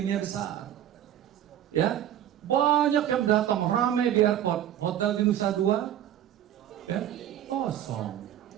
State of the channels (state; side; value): quieter; left; 11.3 dB